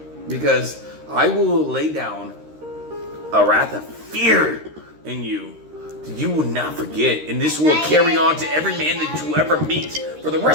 Because I will lay down a wrath of fear in you that you will not forget. And this will carry on to every man that you ever meet for the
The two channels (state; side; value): late; left; 13 ms